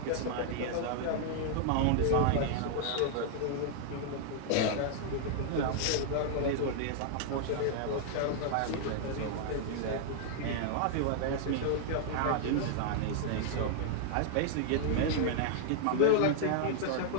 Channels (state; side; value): different; both; correlation -0.01